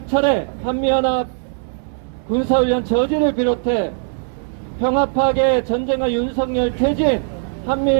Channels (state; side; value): silent; left; 66 dB below the other